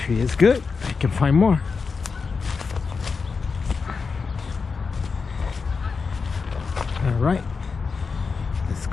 it is good, I can find more. All right, let's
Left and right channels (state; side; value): quieter; right; 5.0 dB